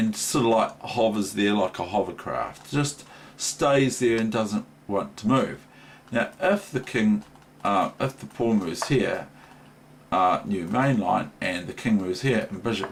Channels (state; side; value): identical; both; correlation 1.00